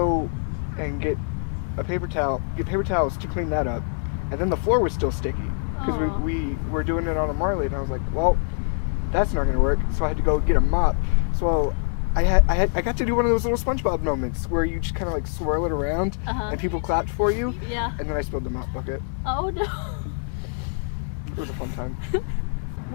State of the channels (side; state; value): right; silent; digital silence